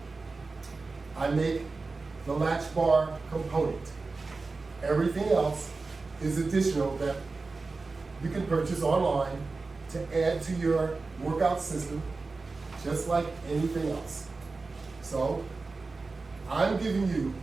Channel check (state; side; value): quieter; left; 3.9 dB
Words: I make the latch bar component. Everything else is additional that you can purchase online to add to your workout system, just like anything else. So I'm giving you